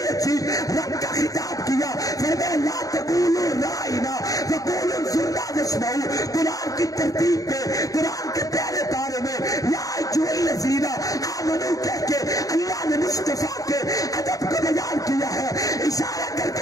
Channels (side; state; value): right; late; 0.17 ms